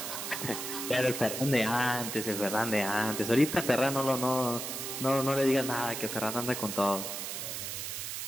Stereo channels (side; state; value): right; noise; hiss, 5 dB below the sound